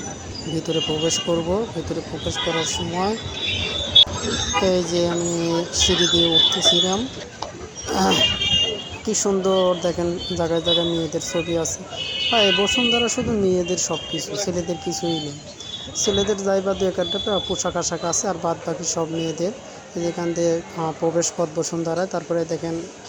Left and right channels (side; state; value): both; identical; correlation 1.00